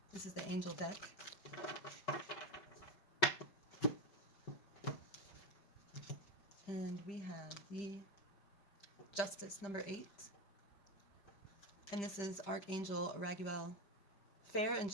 This is the Angel deck. And we have the Justice, number 8. And this is Archangel Raguel. Fair and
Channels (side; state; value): right; late; 5.3 ms